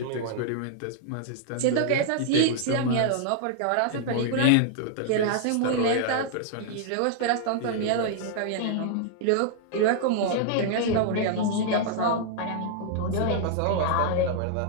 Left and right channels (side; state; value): both; different; correlation -0.01